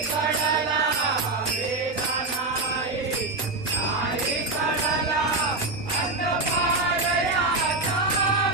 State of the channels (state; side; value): quieter; left; 3.3 dB